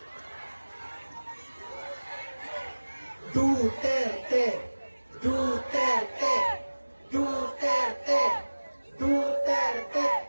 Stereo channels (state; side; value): inverted; both; correlation -1.00